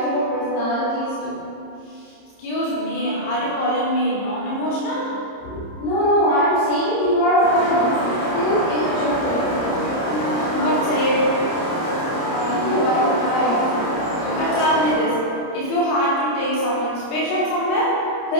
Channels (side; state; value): right; late; 30 ms